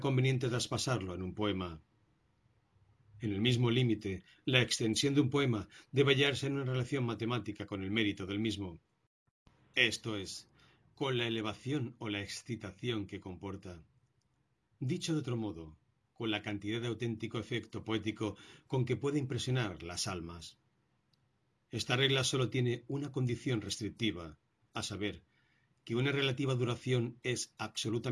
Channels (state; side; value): identical; both; correlation 1.00